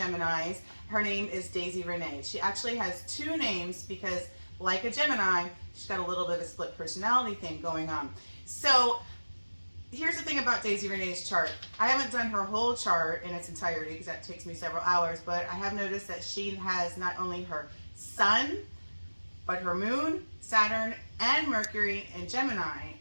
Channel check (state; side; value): inverted; both; correlation -1.00